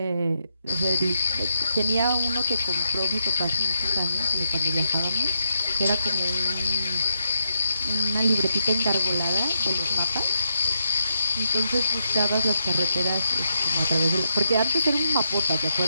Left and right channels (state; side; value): inverted; both; correlation -0.82